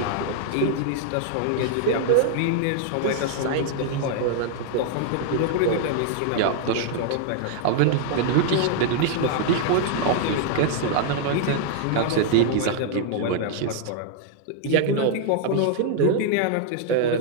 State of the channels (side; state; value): both; different; correlation -0.01